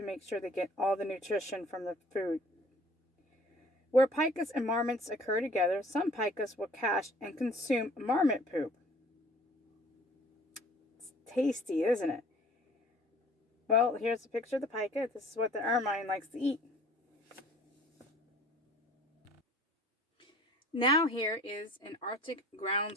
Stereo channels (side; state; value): both; normal; correlation 0.51